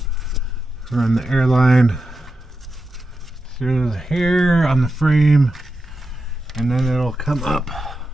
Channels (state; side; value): normal; both; correlation 0.89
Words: Run the airline through here on the frame, and then it'll come up